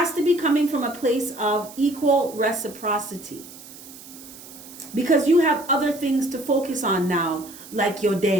to be coming from a place of equal reciprocity. Because you have other things to focus on now, like your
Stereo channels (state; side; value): noise; right; hiss, 17 dB below the sound